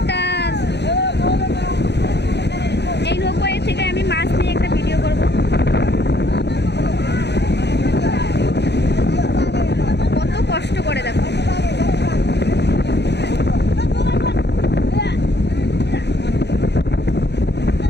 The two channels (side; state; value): right; late; 0.50 ms